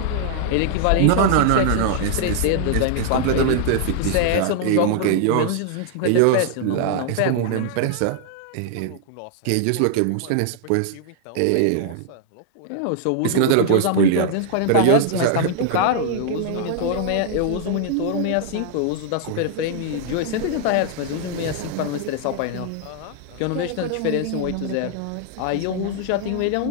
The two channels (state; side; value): different; both; correlation -0.01